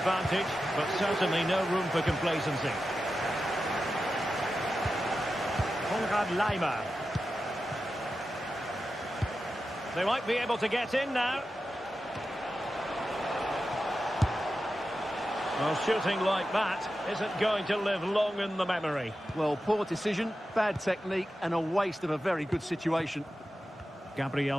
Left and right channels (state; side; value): normal; both; correlation 0.91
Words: but certainly no room for complacency. Konrad Laimer. They might be able to get in now. Well, shooting like that isn't going to live long in the memory. Well, poor decision, bad technique, and a waste of a very good situation. Gabriel